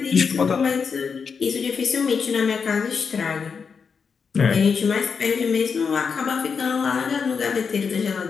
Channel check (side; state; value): right; quieter; 5.8 dB